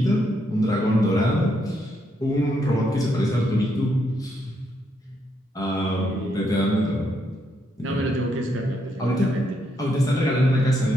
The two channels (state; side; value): normal; both; correlation 0.77